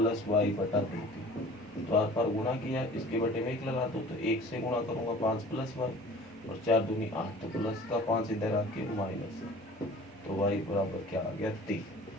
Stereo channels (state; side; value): normal; both; correlation 0.45